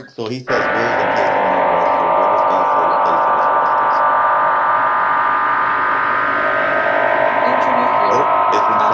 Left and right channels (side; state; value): both; identical; correlation 1.00